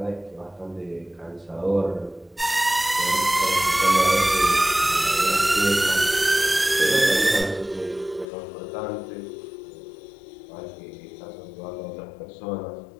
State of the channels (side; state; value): right; drops out; at 8.2 s